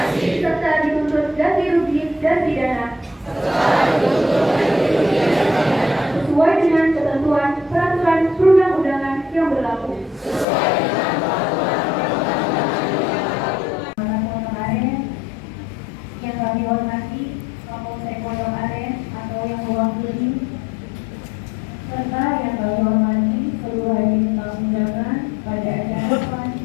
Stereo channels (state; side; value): drops out; right; at 10.5 s